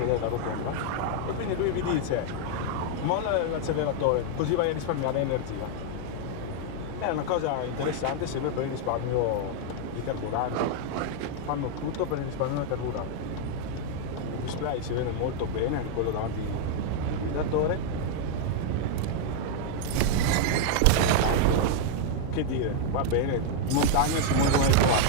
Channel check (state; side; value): different; both; correlation 0.00